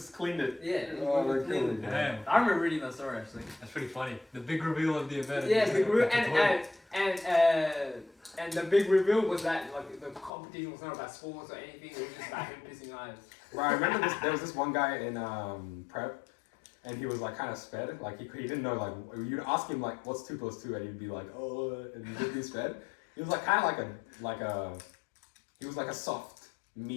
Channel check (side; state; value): right; drops out; at 10.3 s